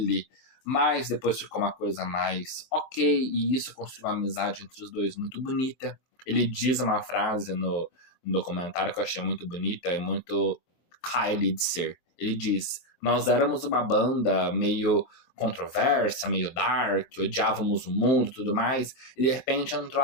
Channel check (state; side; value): late; right; 23 ms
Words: mas depois ficou uma coisa mais ok, e isso construiu uma amizade entre os dois muito bonita. Ele diz uma frase no documentário que eu achei muito bonita e muito Kylie de ser. Ele diz: nós éramos uma banda meio controversa, meio dark, odiávamos o mundo e tudo mais, e de repente entrou